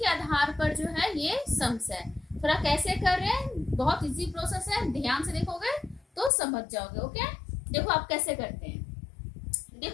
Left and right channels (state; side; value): drops out; right; at 6.3 s